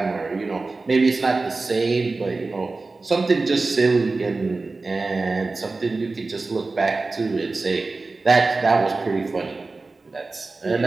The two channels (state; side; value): quieter; left; 3.6 dB